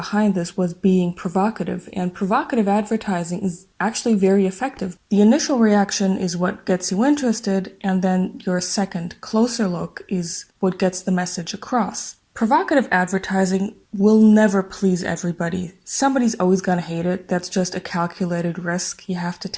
this was being provocative, and provocative advertising is actually very effective. The initial reaction is what gets you interested, and then your second, closer look is what gets the message across. Provocative advertising will never please everybody. Somebody's always gonna hate it. That's just a calculated risk you have to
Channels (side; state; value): both; identical; correlation 1.00